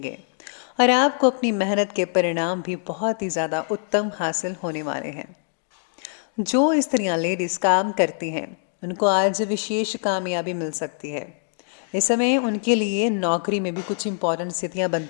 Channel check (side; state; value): right; silent; digital silence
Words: और आपको अपनी मेहनत के परिणाम भी बहुत ही ज़्यादा उत्तम हासिल होने वाले हैं। जो स्त्रियां, लेडीज़ काम करती हैं, उनको आज विशेष कामयाबी मिल सकती है। इस समय उनके लिए नौकरी में भी कुछ इंपॉर्टेंट स्थितियां